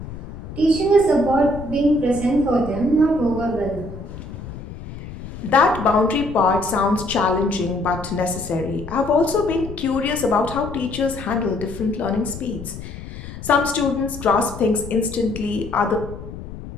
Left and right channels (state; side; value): noise; left; rumble, 12 dB below the sound